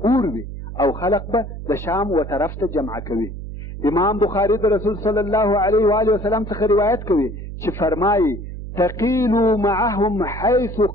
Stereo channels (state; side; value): noise; right; hum, 9 dB below the sound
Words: اور وي او خلق به د شام و طرف ته جمع کوي. امام بخاري د رسول صلی الله علیه و آله وسلم څخه روایت کوي چې فرمایي تقیلوا معهم حیث